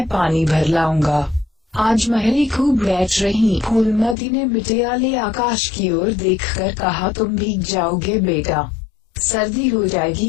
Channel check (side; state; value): right; drops out; at 4.2 s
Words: पानी भर लाऊंगा। आज महरी खूब बैठ रही। फूलमती ने मिटियाले आकाश की ओर देखकर कहा, तुम भीग जाओगे बेटा, सर्दी हो